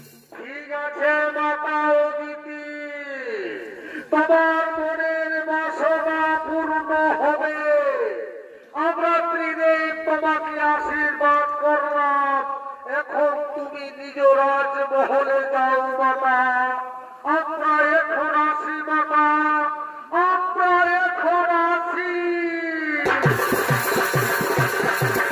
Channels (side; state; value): both; identical; correlation 1.00